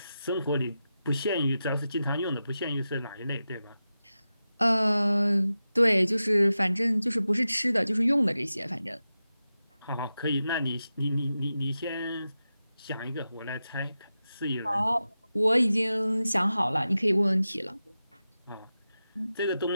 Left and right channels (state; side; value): inverted; both; correlation -0.92